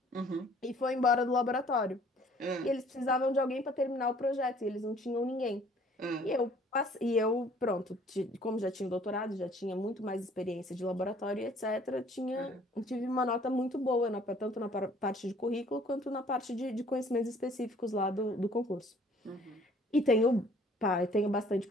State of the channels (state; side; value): normal; both; correlation 0.57